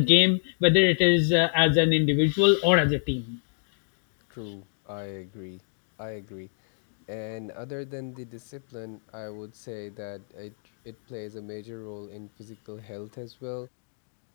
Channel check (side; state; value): right; silent; digital silence